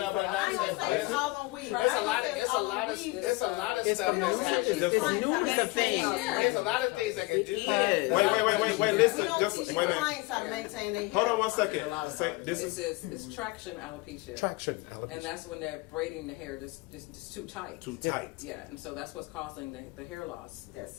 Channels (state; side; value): quieter; right; 23.2 dB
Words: ain't gonna say it's all on weave. It's a lot of stuff that's happening. There's a lot of things that can do that. Wait, listen. We don't teach clients how to maintain their hair. Hold on 1 second. It's traction alopecia. Traction alopecia. And that's when they're braiding the hair just too tight. Too tight. Yeah, and so that's what's causing the hair loss.